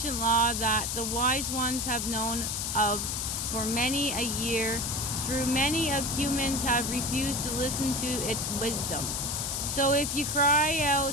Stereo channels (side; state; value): left; noise; hiss, 1 dB below the sound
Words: law that the wise ones have known of for many a year. Through many of humans have refused to listen to its wisdom. So if you cry